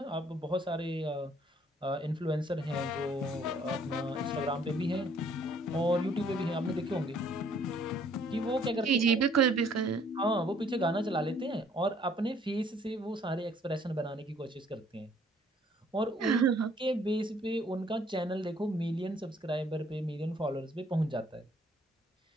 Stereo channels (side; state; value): both; normal; correlation 0.61